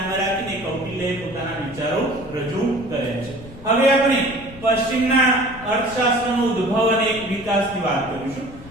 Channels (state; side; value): noise; left; rumble, 18 dB below the sound